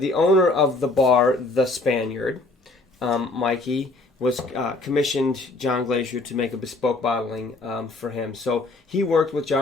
owner of the bar, the Spaniard, Mikey, was commissioned John Glazier to make a bespoke bottling for him. So he worked with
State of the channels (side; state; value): right; quieter; 3.1 dB